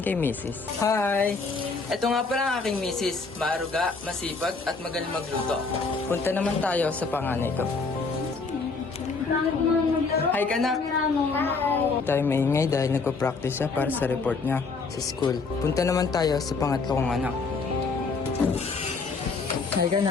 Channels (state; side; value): quieter; right; 4.3 dB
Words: kay Mrs. Hi! Ito nga pala ang aking Mrs. Maaruga, masipag at magaling magluto. Punta naman tayo sa panganay ko. Hi kanak! Tayo maingay dahil nagpa-practice siya para sa report niya sa school. Punta naman tayo sa pangatlo kong anak. Hi